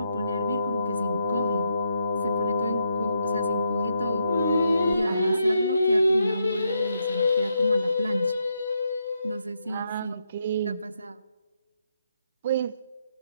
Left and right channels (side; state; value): both; inverted; correlation -0.80